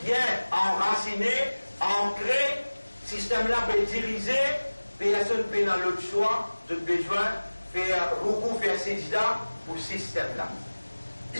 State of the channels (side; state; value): both; inverted; correlation -1.00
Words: bien enraciné, ancré, ce système-là peut diriger, personne peut dans l'autre choix, de besoin, faire beaucoup, faire sédida pour ce système-là.